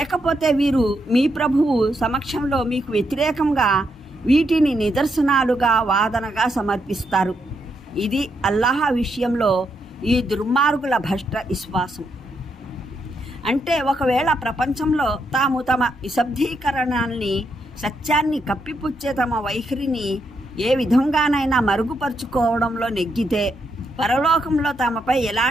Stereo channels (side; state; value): both; normal; correlation 0.80